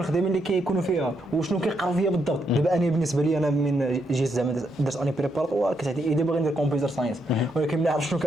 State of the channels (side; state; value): both; normal; correlation 0.78